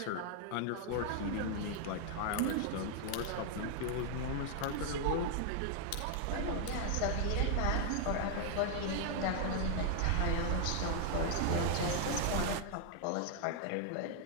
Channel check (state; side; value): different; both; correlation 0.00